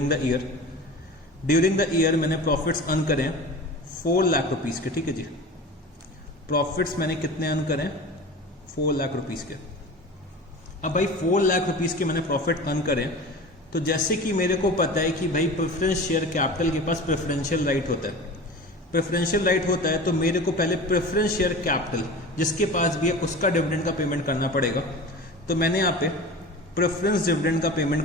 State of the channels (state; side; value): normal; both; correlation 0.34